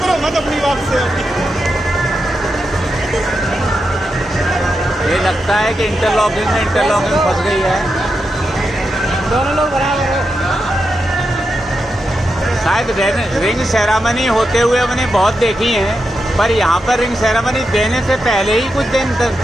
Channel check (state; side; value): normal; both; correlation 0.87